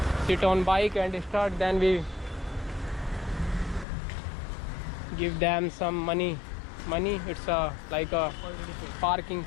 sit on bike and start. Then we give them some money. It's like a parking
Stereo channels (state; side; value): drops out; right; at 3.9 s